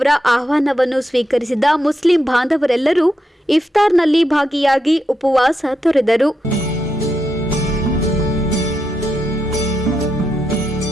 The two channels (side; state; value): both; normal; correlation 0.84